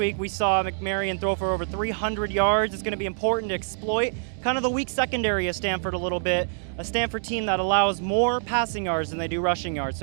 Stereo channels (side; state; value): left; silent; digital silence